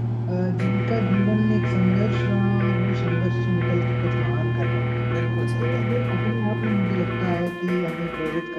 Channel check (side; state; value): both; identical; correlation 1.00